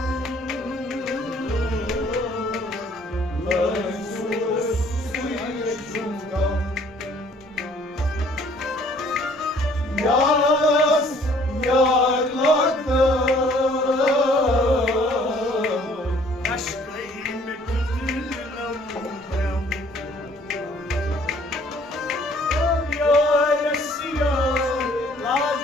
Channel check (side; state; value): both; normal; correlation 0.58